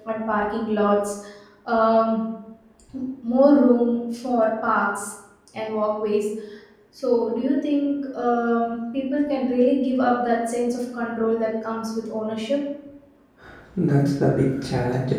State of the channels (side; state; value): both; identical; correlation 1.00